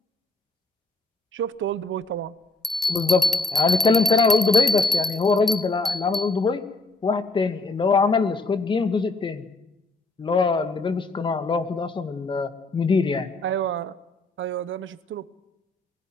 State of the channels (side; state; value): right; quieter; 3.2 dB